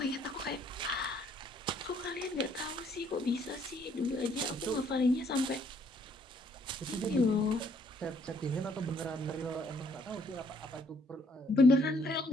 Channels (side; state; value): both; normal; correlation 0.65